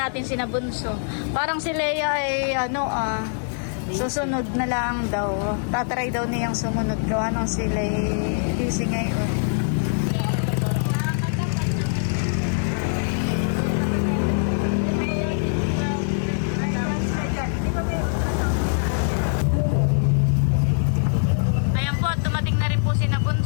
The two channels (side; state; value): right; silent; digital silence